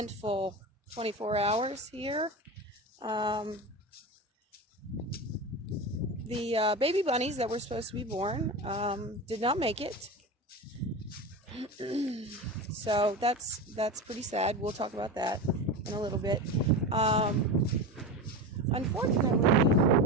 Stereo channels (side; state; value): both; normal; correlation 0.24